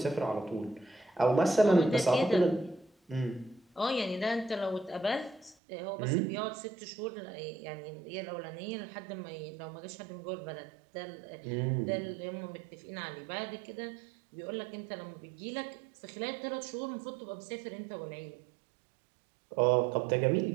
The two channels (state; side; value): drops out; left; at 5.6 s